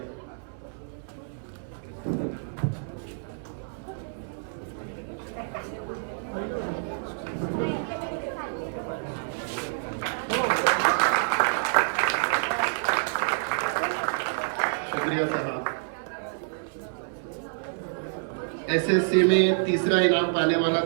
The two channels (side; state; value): left; silent; 59 dB below the other